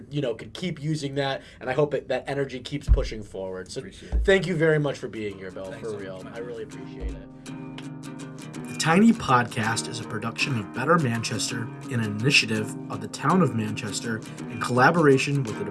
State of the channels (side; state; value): both; identical; correlation 1.00